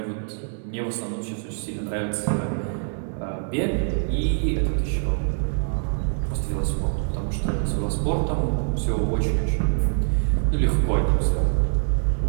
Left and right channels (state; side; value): silent; left; 62 dB below the other